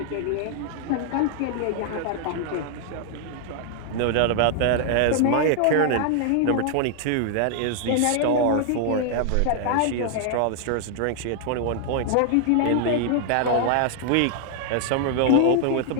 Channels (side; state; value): both; different; correlation 0.00